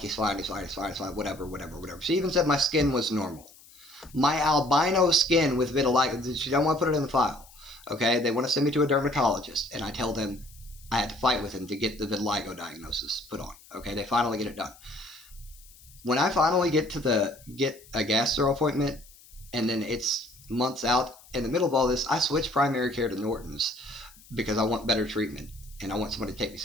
fine, whatever. She even said my skin was normal. My albino skin with vitiligo, she don't want to put it in the file. Okay, they want to send me to a dermatologist, and I tell them I had to fight with him to get the vitiligo diagnosis put on. Okay, they finally get it done. When I finally get a gastro appointment, and then it's months out, in the middle of all this, I switch primary care to Norton's because I want better treatment and I want somebody to take me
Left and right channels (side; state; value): left; noise; hiss, 24 dB below the sound